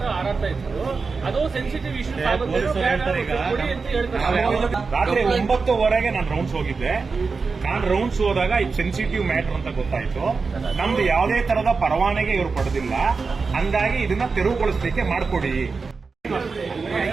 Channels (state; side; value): quieter; left; 4.6 dB